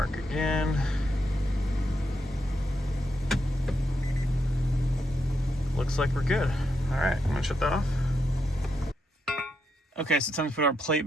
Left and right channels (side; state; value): both; normal; correlation 0.82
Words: again. Looks like we're good. All right, I'm gonna shut that off. Okay, so it's time to put our plate